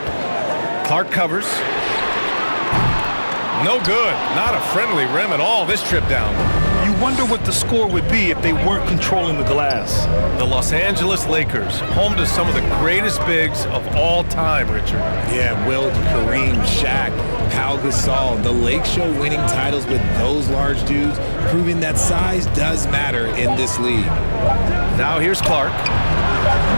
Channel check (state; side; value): inverted; both; correlation -1.00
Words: Clark covers. No good. Not a friendly rim at all this trip down. You wonder what the score would be if they weren't controlling the glass. The Los Angeles Lakers, home to some of the greatest bigs of all time, Richard. Yeah, Wilt, Kareem, Shaq, Pau Gasol. The Lake Show winning titles with those large dudes, proving that size does matter in this league. Now here's Clark.